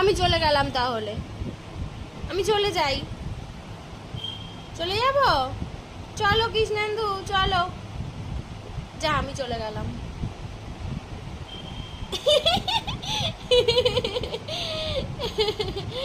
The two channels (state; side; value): identical; both; correlation 1.00